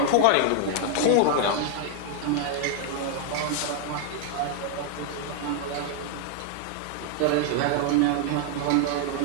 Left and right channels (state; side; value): different; both; correlation 0.00